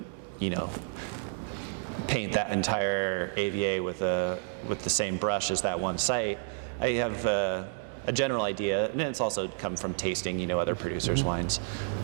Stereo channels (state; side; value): silent; left; 56 dB below the other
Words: paint that entire AVA with the same brush as that one site. I have a general idea, and it's also come from tasting, other producers' wines,